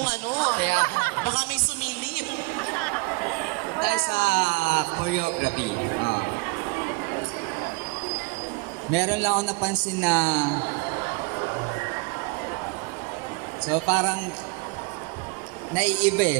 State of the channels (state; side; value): quieter; left; 29.0 dB